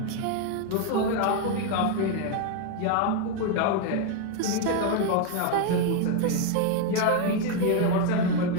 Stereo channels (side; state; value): both; different; correlation 0.01